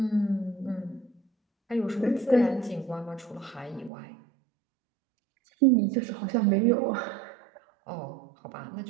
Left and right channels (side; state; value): left; drops out; at 3.9 s